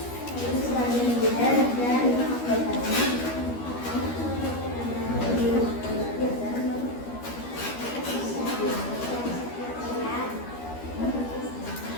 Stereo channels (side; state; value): right; late; 13 ms